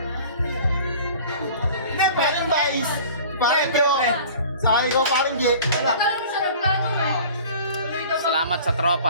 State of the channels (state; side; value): inverted; both; correlation -0.44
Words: Hindi, Paring Vice. Paring Jo. Sa akin ko, Paring J. Wala. Kala mo sa nagplano mo. Tuloy daw ba? Salamat sa